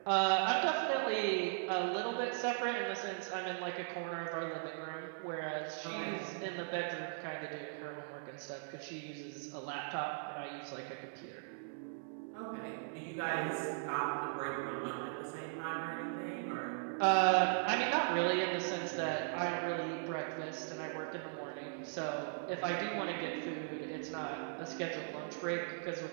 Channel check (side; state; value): left; silent; 52 dB below the other